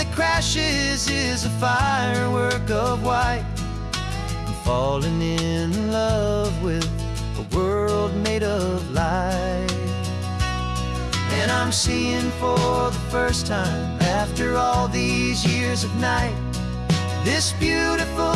crashes is a firework of white. I'm falling in love with a world made of light. And I'm seeing for the first time, after all these years of night, this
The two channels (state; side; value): identical; both; correlation 1.00